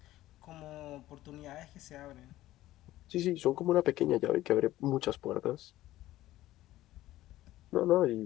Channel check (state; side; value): quieter; right; 15.4 dB